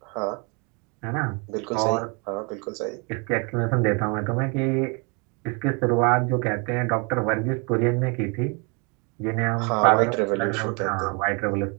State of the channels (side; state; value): left; quieter; 32.7 dB